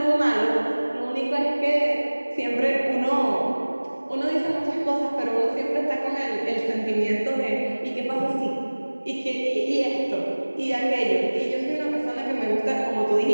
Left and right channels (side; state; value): both; inverted; correlation -1.00